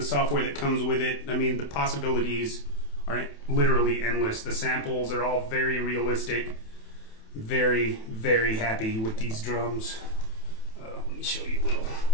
software that comes with it. I mean, the possibilities are literally endless. The samples are all very realistic. Very, very happy with these drums. Let me show you a little.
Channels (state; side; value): late; right; 27 ms